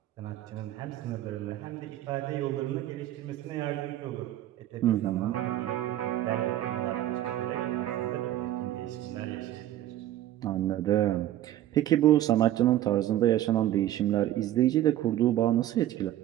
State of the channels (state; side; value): quieter; left; 13.2 dB